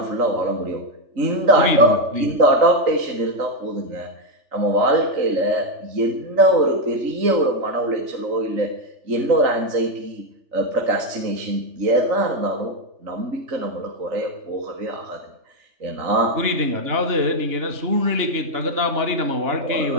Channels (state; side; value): late; left; 3.4 ms